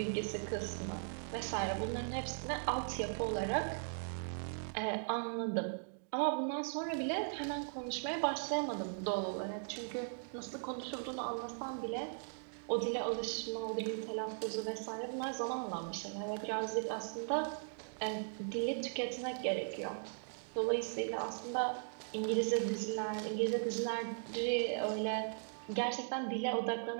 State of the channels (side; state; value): left; silent; digital silence